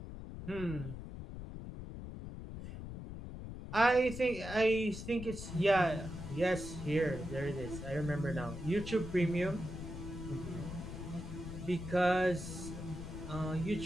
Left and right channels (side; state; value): left; noise; rumble, 9 dB below the sound